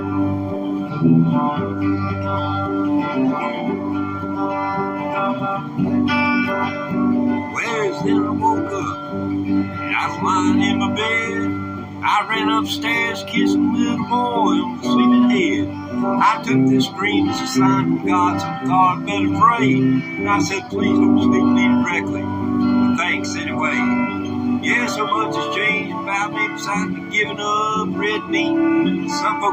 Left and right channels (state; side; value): identical; both; correlation 1.00